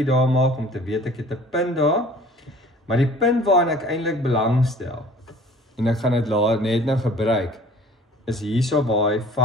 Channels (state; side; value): normal; both; correlation 0.48